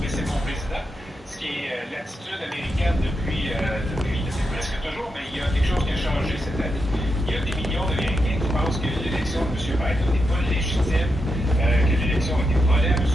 mais c'est mon président, ce qui est l'attitude américaine depuis presque toujours, mais il y a quelque chose qui a changé cette année. Il y a des millions d'Américains qui pensent que l'élection de M. Biden n'est pas légitime, que l'élection a été volée à M.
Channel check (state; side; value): normal; both; correlation 0.85